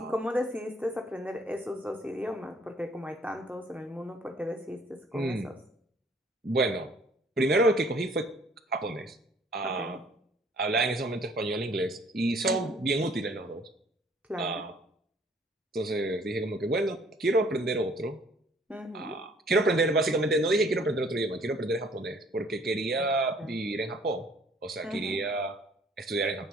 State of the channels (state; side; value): normal; both; correlation 0.58